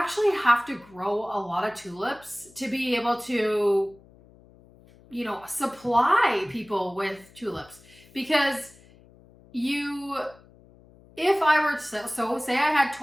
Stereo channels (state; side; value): noise; left; hum, 26 dB below the sound